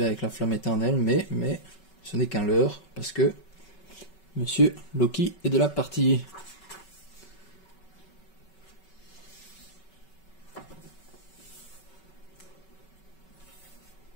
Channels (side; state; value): right; late; 5.3 ms